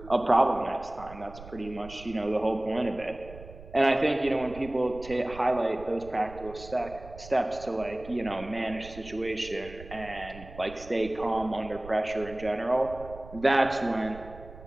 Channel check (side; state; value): right; noise; rumble, 16 dB below the sound